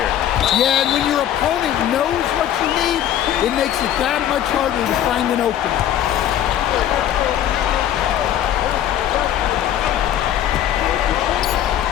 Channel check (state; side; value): quieter; right; 11.0 dB